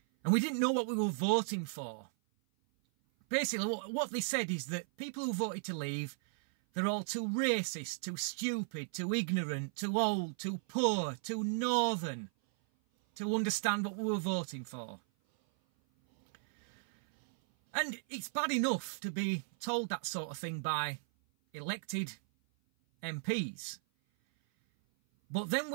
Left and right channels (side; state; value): left; silent; 54 dB below the other